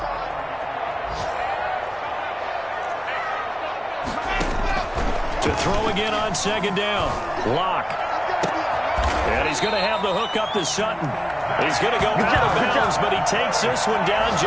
To throw again on second down. Locke. And he's going to have the hook up to Sutton. He's going to go out of bounds, but he takes this one down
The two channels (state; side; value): identical; both; correlation 1.00